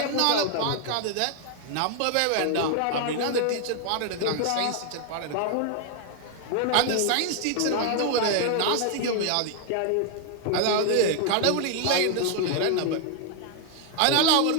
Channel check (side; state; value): both; different; correlation 0.00